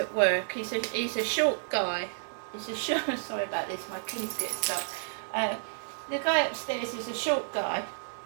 work. He's a short guy. He's a short. Sorry about this. My keys get stuck. The guy upstairs is a short guy.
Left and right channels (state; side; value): silent; left; digital silence